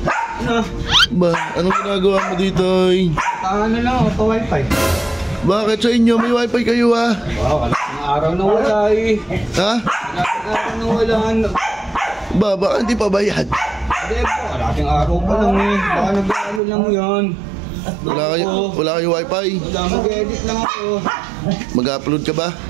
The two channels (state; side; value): drops out; left; at 16.6 s